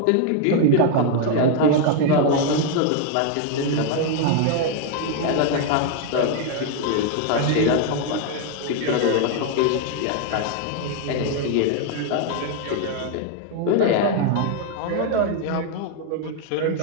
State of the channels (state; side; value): different; both; correlation 0.01